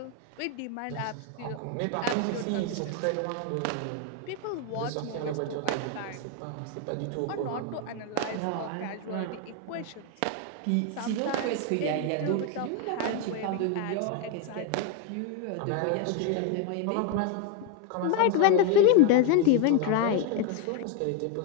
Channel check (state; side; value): different; both; correlation 0.01